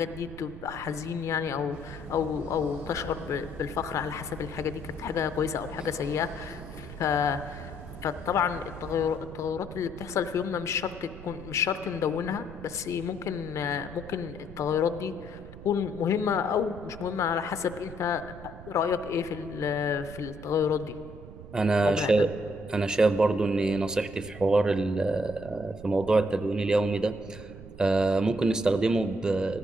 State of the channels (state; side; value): noise; right; rumble, 14 dB below the sound